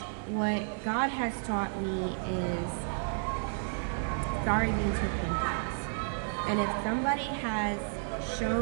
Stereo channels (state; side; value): silent; left; 57 dB below the other